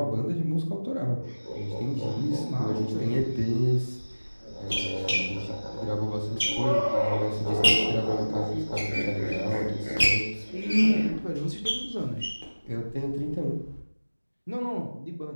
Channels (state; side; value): inverted; both; correlation -1.00